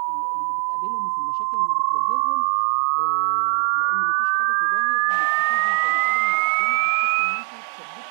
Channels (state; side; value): silent; left; digital silence